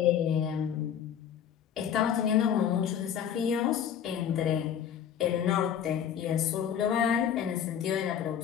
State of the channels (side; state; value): right; quieter; 8.8 dB